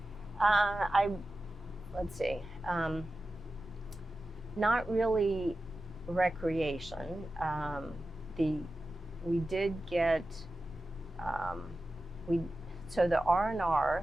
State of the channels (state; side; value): normal; both; correlation 0.94